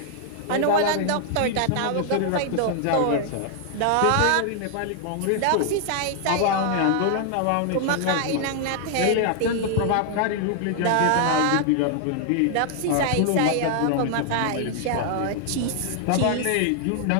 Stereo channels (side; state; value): both; different; correlation 0.00